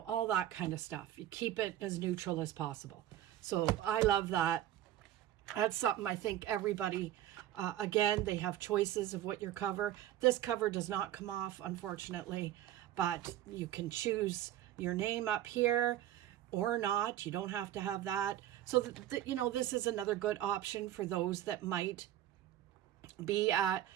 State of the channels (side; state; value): left; quieter; 12.7 dB